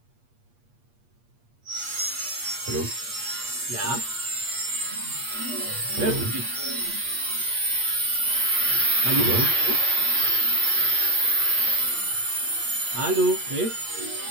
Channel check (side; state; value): left; late; 8.5 ms